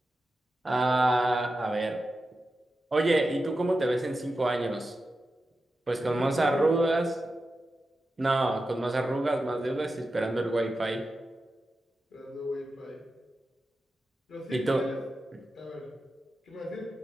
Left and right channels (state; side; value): normal; both; correlation 0.91